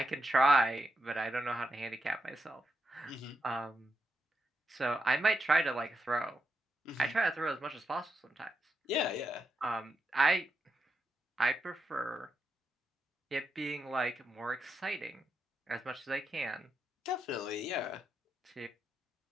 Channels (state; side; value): normal; both; correlation 0.84